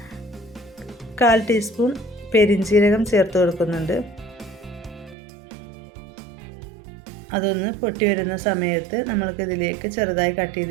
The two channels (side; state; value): left; drops out; at 5.2 s